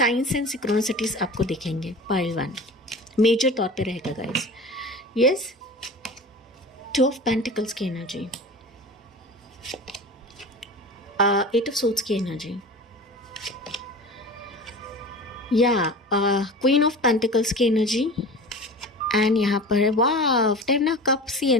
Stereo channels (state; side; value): normal; both; correlation 0.35